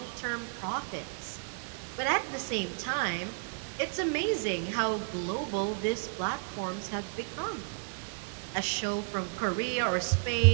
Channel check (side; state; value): left; silent; digital silence